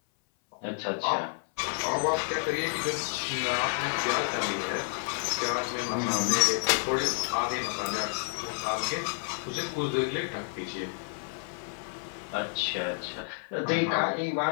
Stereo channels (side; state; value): right; silent; 58 dB below the other